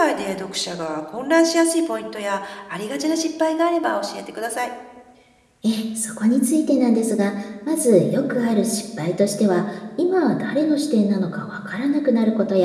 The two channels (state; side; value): identical; both; correlation 1.00